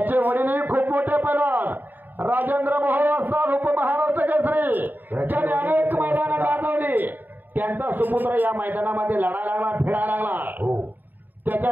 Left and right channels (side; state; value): left; late; 0.089 ms